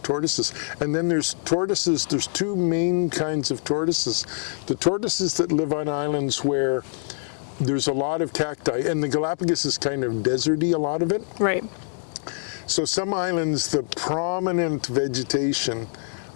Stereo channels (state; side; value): silent; right; digital silence